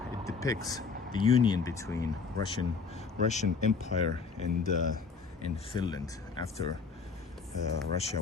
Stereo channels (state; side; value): quieter; right; 4.9 dB